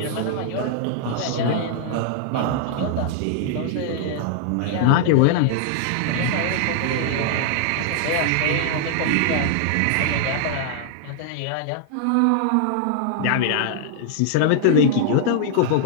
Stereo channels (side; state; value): both; different; correlation -0.01